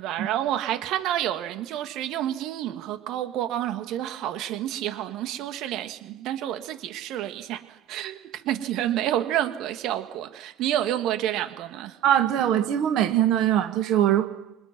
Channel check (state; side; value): quieter; left; 11.2 dB